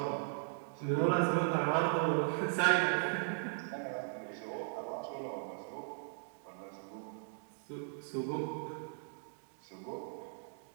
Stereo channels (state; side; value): silent; left; digital silence